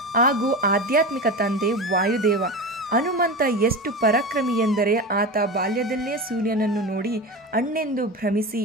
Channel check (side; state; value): both; normal; correlation 0.26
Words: ಹಾಗೂ ಆಧ್ಯಾತ್ಮಿಕ ತಂದೆ ವಾಯುದೇವ. ಹನುಮಂತ ಎಷ್ಟು ಪರಾಕ್ರಮಿ ಎಂದರೆ ಆತ ಬಾಲ್ಯದಲ್ಲೇ ಸೂರ್ಯನನ್ನು ನೋಡಿ ಅಣ್ಣೆಂದು ಭ್ರಮಿಸಿ